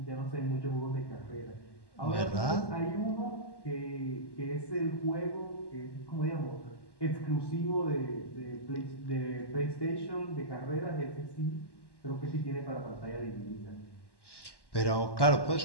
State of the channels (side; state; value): right; late; 1.1 ms